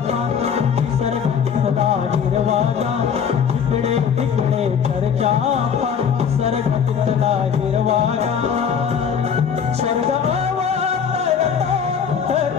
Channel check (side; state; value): right; quieter; 7.3 dB